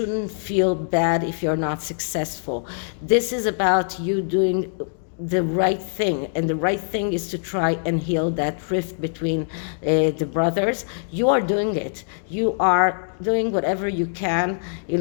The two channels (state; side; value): silent; right; digital silence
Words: feel bad if you're not successful. This is about you doing the right thing, and the right thing is to try and heal that rift between the brothers. You are doing it. You are doing whatever you can in